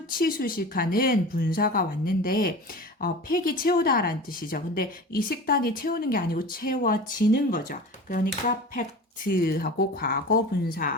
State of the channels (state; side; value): normal; both; correlation 0.35